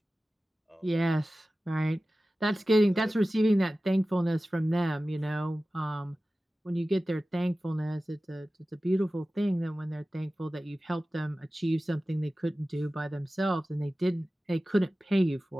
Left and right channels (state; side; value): normal; both; correlation 0.96